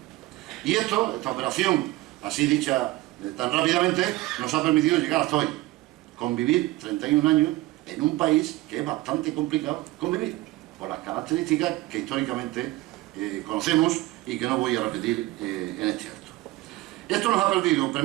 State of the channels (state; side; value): quieter; left; 18.5 dB